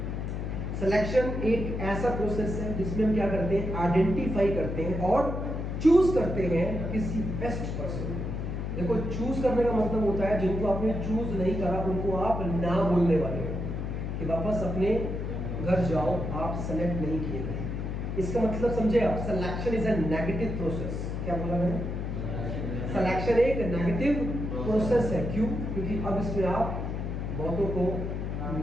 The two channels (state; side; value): noise; left; hum, 3 dB below the sound